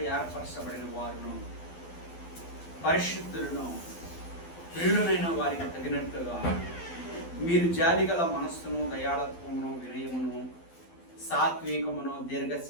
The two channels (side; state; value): right; late; 12 ms